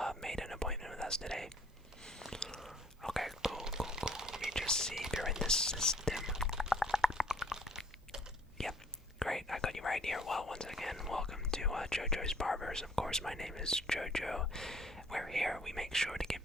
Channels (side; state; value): both; normal; correlation 0.58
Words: made an appointment with us today? Okay, cool, cool, cool. Let me just see if you're in this system. Yep, great. I got you right here. Well, once again, welcome to JoJo's Barbers. Of course, my name is JoJo. We're here. We make sure to give